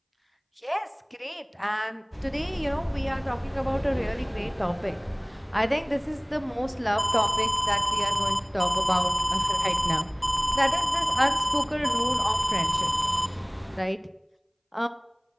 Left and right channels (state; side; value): identical; both; correlation 1.00